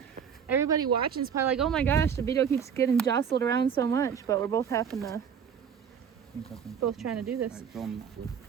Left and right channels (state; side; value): quieter; left; 7.5 dB